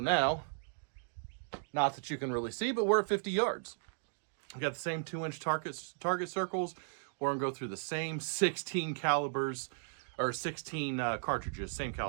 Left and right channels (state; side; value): silent; left; digital silence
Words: not that you can really see, but we're at 50 yards. We got the same 2-inch target circles. We're gonna go through the same 16 calibers, or 16 cartridges, same